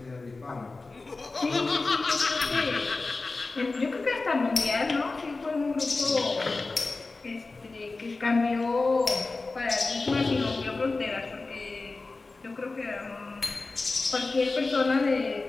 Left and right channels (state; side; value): quieter; right; 3.6 dB